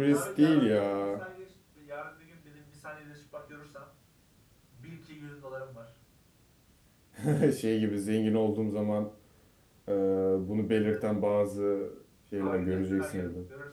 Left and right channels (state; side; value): identical; both; correlation 1.00